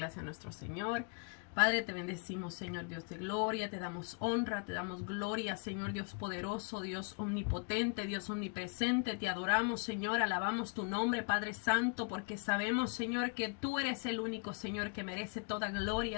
a nuestro Señor. Padre, te bendecimos, Señor Dios de gloria, te damos honra, te damos gloria, Señor Dios poderoso, Dios omnipotente, Dios omnipresente, te adoramos, Señor, alabamos tu nombre, Padre Santo, porque sabemos, Señor, que tú eres el único, Señor, que merece toda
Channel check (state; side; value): quieter; right; 38.1 dB